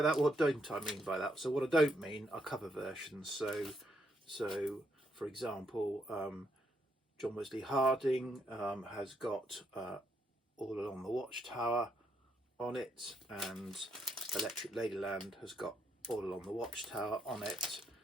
that? What don't I mean by that? So what I don't mean are cover versions. So for example, John Wesley Harding has got All Along the Watchtower on it, and Electric Ladyland has got All Along the Watchtower on it,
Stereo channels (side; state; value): both; normal; correlation 0.76